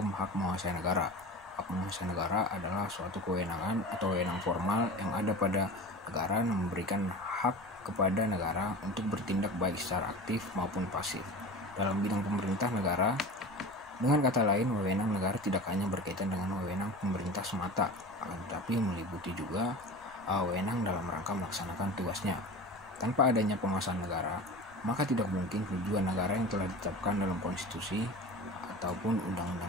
hak menguasai negara. Hak menguasai negara adalah suatu kewenangan atau wewenang formal yang ada pada negara yang memberikan hak kepada negara untuk bertindak baik secara aktif maupun pasif dalam bidang pemerintah negara. Dengan kata lain, wewenang negara tidak hanya berkaitan dengan wewenang pemerintah semata, akan tetapi meliputi juga wewenang dalam rangka melaksanakan tugasnya. Tanpa adanya penguasaan negara, maka tidak mungkin tujuan negara yang telah ditetapkan dalam konstitusi ataupun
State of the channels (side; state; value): right; noise; rumble, 26 dB below the sound